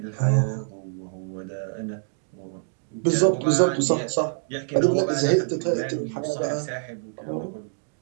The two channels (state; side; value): silent; left; digital silence